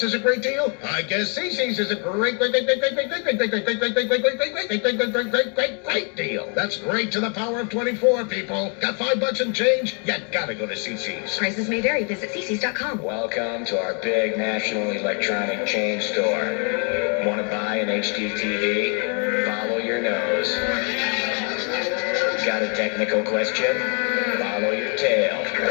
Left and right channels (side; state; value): right; quieter; 38.1 dB